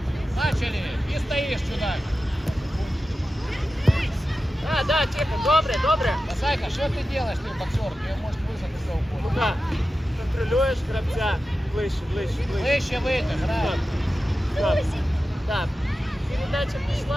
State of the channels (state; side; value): normal; both; correlation 0.93